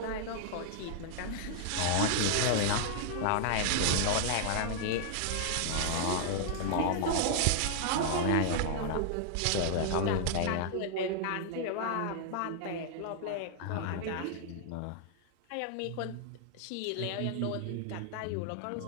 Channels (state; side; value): different; both; correlation 0.00